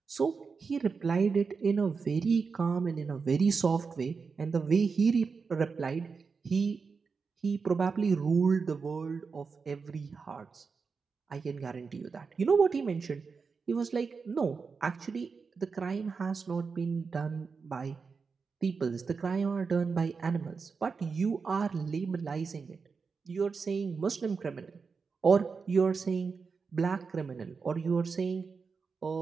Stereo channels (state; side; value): quieter; left; 5.1 dB